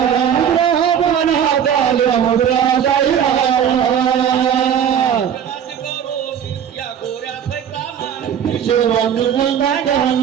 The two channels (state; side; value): quieter; left; 8.6 dB